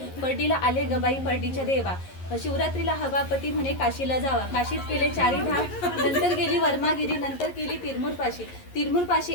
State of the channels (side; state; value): right; late; 11 ms